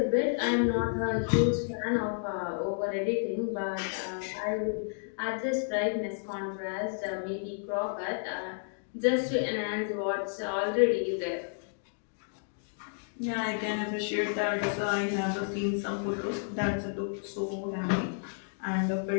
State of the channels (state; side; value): silent; right; digital silence